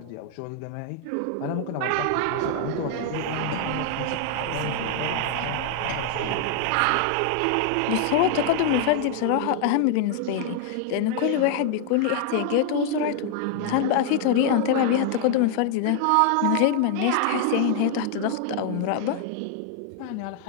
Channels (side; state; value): both; different; correlation 0.00